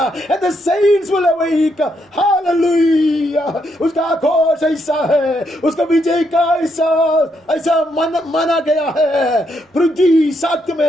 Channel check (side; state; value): both; normal; correlation 0.77